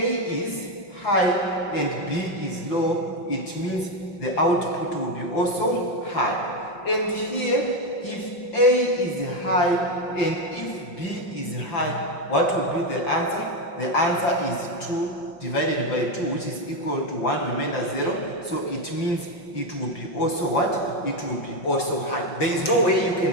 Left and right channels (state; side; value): late; right; 5.6 ms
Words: is high and B is low, it means the output will be also high. And here, if A is high and if B is high, what will be the answer? The answer is 2 divided by 2, which is equal to 1 remainder 0. So it means it will be also what? It will be also high. There is no way you